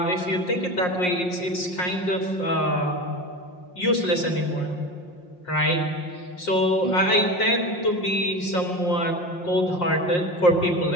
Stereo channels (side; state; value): right; late; 5.6 ms